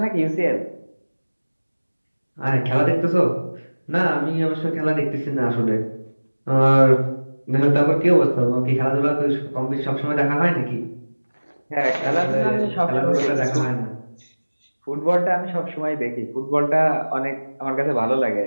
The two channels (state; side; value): inverted; both; correlation -1.00